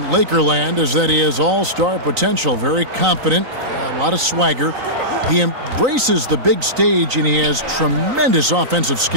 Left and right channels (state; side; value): late; left; 3.9 ms